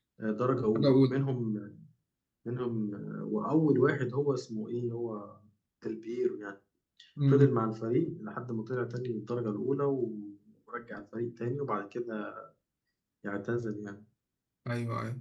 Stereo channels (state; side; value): identical; both; correlation 1.00